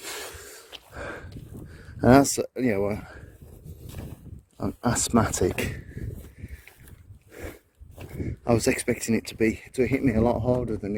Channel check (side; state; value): both; identical; correlation 1.00